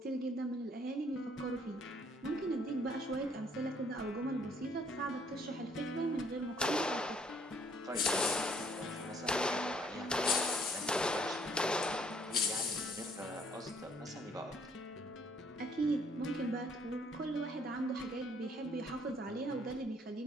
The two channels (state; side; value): normal; both; correlation 0.63